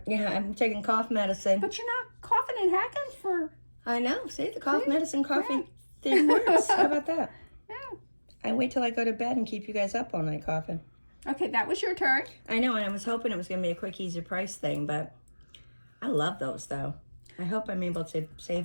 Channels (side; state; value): both; inverted; correlation -1.00